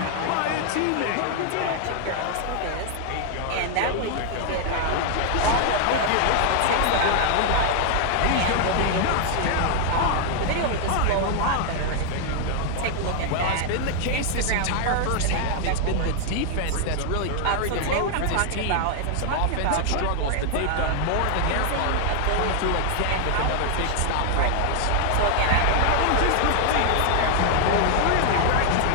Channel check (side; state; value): both; different; correlation 0.00